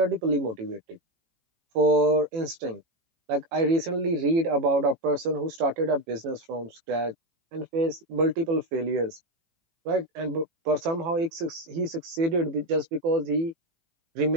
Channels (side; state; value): left; late; 18 ms